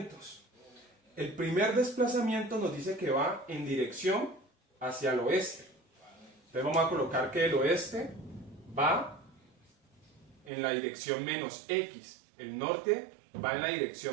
El primer desplazamiento nos dice que va en dirección hacia el oeste. Entonces vamos a colocar que el oeste va en la dirección menos X. El norte va en la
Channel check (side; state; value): left; drops out; at 10.5 s